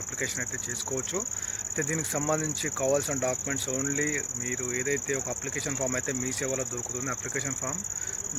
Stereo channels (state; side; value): identical; both; correlation 1.00